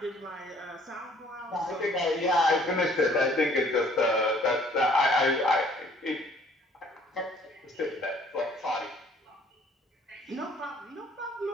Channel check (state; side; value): normal; both; correlation 0.58